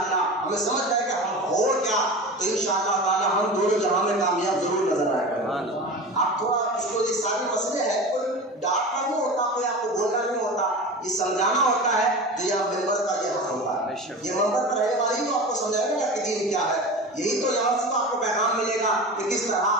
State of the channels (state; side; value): normal; both; correlation 0.31